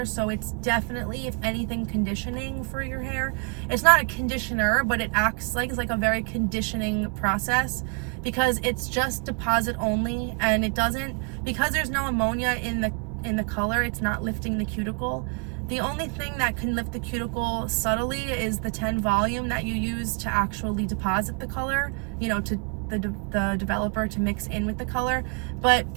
so it's definitely, if anything, conditioning for your hair. It's not a conditioner, but it acts like it's like a very conditioning process, because it's just deposit only, and it doesn't, because there's no ammonia in the color, it's not lifting the cuticle. The only thing that can lift the cuticle subtly is the 10 volume that you use to actually deposit the color, you know, to the developer to mix in with the color. But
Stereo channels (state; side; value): quieter; left; 36.3 dB